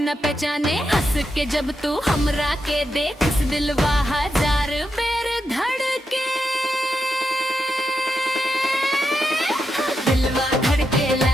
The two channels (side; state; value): both; normal; correlation 0.85